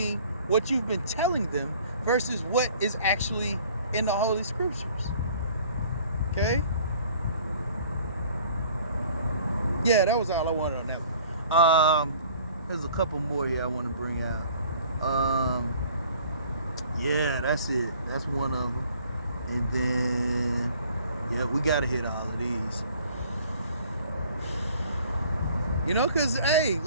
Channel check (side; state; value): both; inverted; correlation -0.53